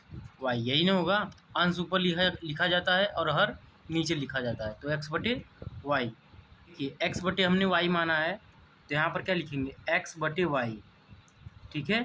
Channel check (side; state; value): both; identical; correlation 1.00